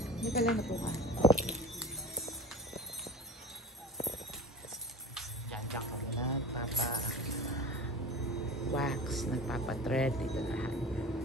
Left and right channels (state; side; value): normal; both; correlation 0.36